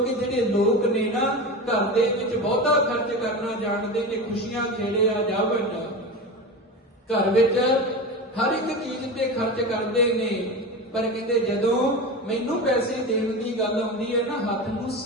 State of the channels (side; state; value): both; normal; correlation 0.25